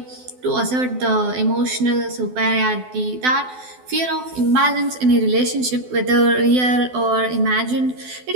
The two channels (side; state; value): left; late; 12 ms